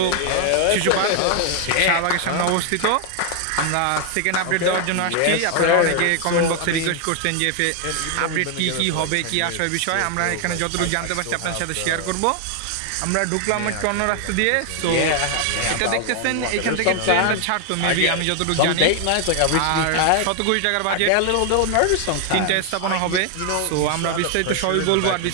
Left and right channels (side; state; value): both; different; correlation 0.00